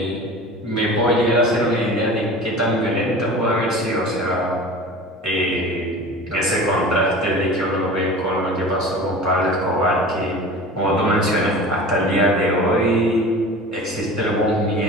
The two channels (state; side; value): normal; both; correlation 0.37